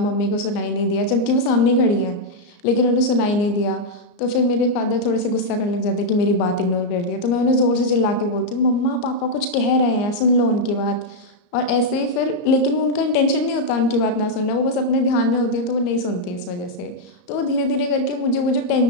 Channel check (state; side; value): late; right; 34 ms